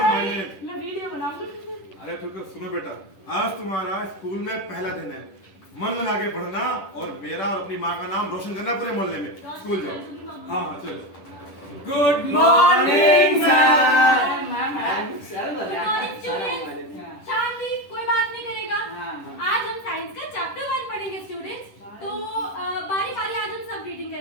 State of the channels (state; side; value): late; right; 10 ms